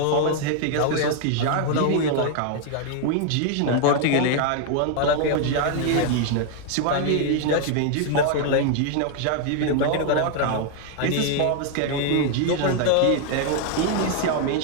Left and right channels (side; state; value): both; different; correlation 0.00